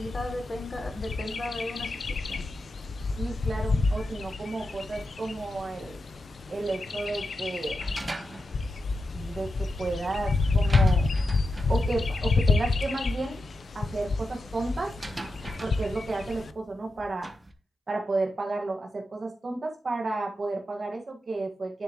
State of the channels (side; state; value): both; normal; correlation 0.88